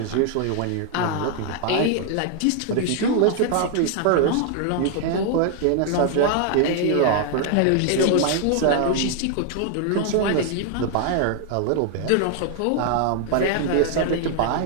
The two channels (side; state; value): both; different; correlation 0.00